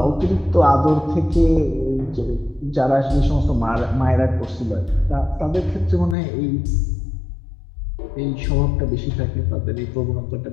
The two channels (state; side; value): drops out; right; at 6.2 s